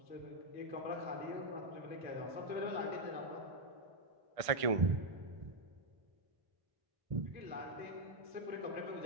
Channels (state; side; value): late; left; 1.5 ms